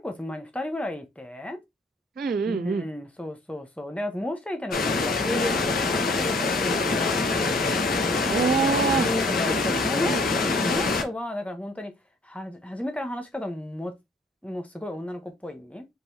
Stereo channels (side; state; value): both; normal; correlation 0.57